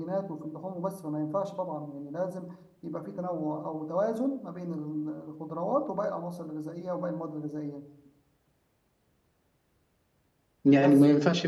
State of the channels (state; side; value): identical; both; correlation 1.00